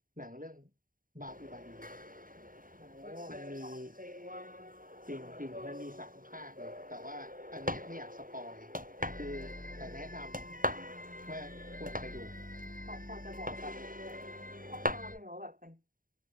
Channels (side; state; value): left; late; 0.40 ms